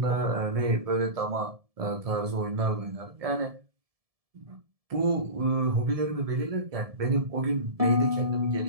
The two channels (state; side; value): late; left; 1.7 ms